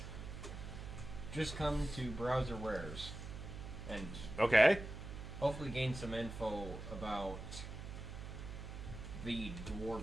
Just come to Browser Wares and Okay. hopefully gain some info about the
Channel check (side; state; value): right; noise; hum, 9 dB below the sound